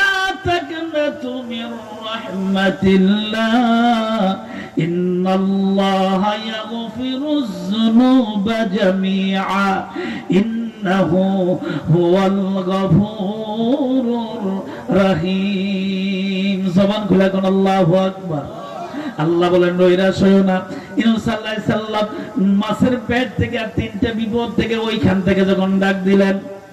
তাকনাতু মির রাহমাতিল্লাহ, ইন্নাল্লাহা ইয়াগফিরুয যুনুবা জামিআ, ইন্নাহু হুয়াল গফুরুর রহিম। জবান খুলে কোন আল্লাহু আকবার। আল্লাহ বলেন নৈরাশ হইও না। ইউনূস আলাইহিস সালাম মাছের পেট থেকে আর তিনটা বিপদ থেকে ওইখান থেকে যখন ডাক দিলেন,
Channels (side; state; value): both; identical; correlation 1.00